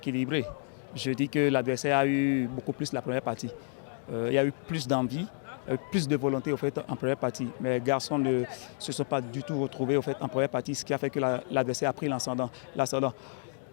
Je dis que l'adversaire a eu beaucoup plus la première partie. Il y a eu plus d'envie, plus de volonté au fait, en première partie. Mais les garçons ne se sont pas du tout retrouvés au fait, en première partie, ce qui a fait que l'adversaire a pris l'ascendant.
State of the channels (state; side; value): silent; right; 58 dB below the other